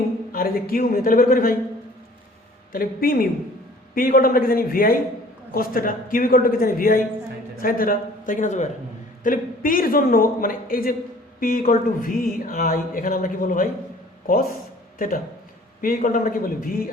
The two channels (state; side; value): normal; both; correlation 0.52